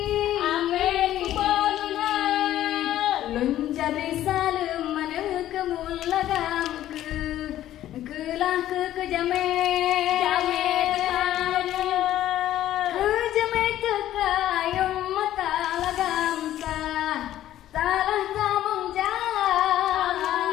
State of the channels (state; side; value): quieter; right; 12.9 dB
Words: Ape kubona. Lon jabri salem mana kemul lagam kelah ke jame.